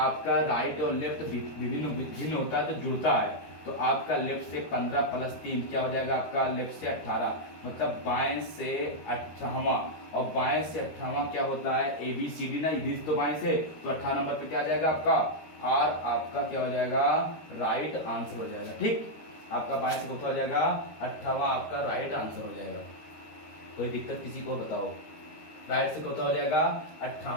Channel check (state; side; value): late; right; 13 ms